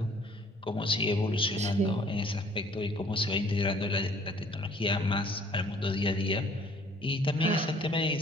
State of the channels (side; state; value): both; normal; correlation 0.57